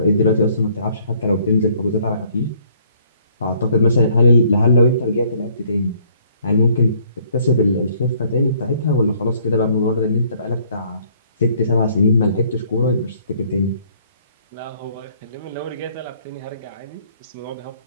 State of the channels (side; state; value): both; inverted; correlation -0.62